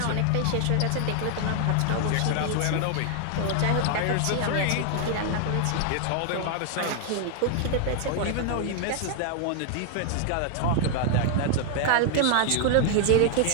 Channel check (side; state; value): both; different; correlation 0.00